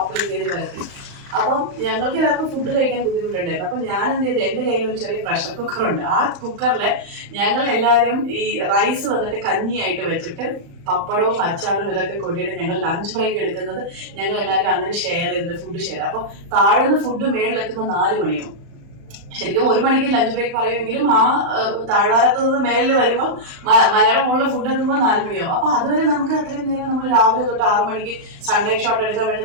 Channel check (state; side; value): late; left; 35 ms